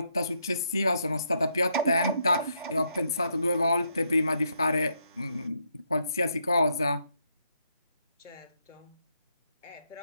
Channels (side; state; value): both; inverted; correlation -0.77